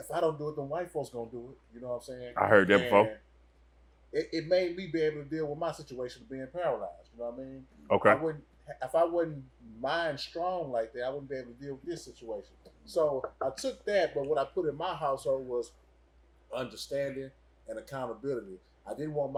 I don't do it, then white folks gonna do it." You know what I'm saying? I heard that before. It made me be able to deal with my situation of being paralyzed. You know what I mean? Okay. If I wasn't mind strong like that, I wouldn't be able to deal with this situation. So I took that, but what I put in my household was understanding and accountability. I didn't want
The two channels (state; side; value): identical; both; correlation 1.00